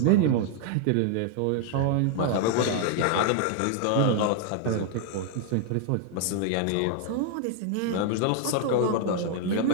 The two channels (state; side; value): different; both; correlation 0.00